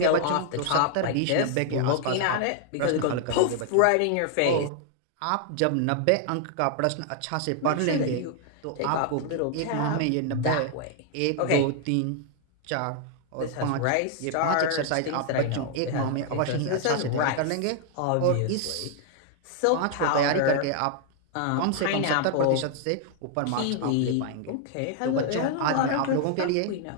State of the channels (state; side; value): different; both; correlation 0.00